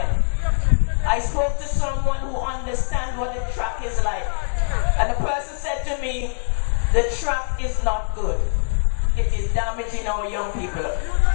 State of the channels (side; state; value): right; silent; 64 dB below the other